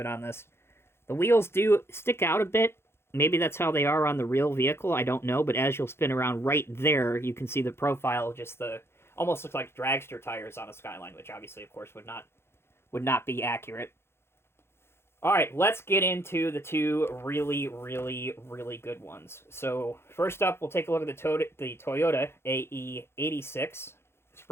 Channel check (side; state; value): right; late; 0.12 ms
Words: on this. The wheels do stick out a bit. Maybe that's how they are on the real vehicle. I don't know, but as you'll spin around right there, you can see the profile, just almost looks like dragster tires on a Skyline, which obviously, of course, would not be accurate. All right, let's get into the two really, really, really good ones. So first up, we'll take a look at the Toyota AE86